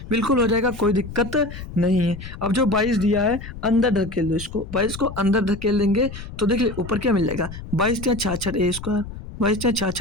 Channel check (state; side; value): noise; left; rumble, 11 dB below the sound